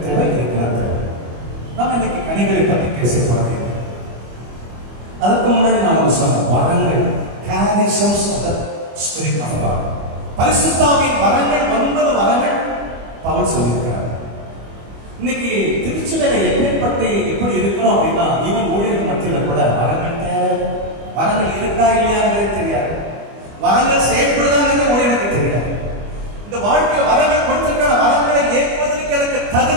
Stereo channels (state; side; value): late; left; 25 ms